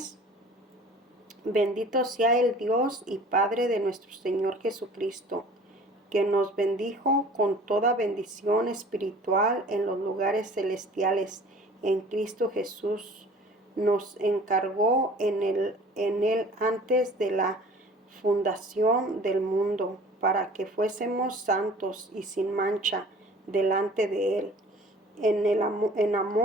Bendito sea el Dios y Padre de nuestro Señor Jesucristo, que nos bendijo con toda bendición espiritual en los lugares celestiales en Cristo Jesús. Nos encargó en él antes de la fundación del mundo, para que fuésemos santos y sin mancha delante de Él. En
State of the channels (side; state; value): both; normal; correlation 0.47